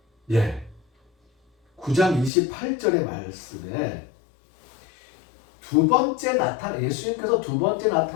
예. 9장 28절의 말씀에 예수님께서 두 번째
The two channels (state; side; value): drops out; right; at 2.3 s